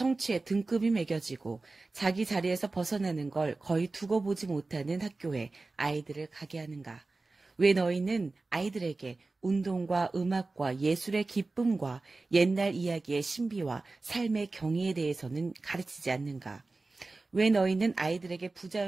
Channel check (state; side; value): quieter; left; 3.4 dB